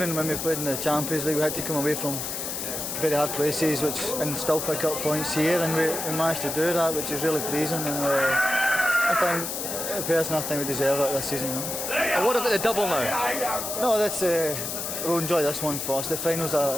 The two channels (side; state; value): left; noise; hiss, 4 dB below the sound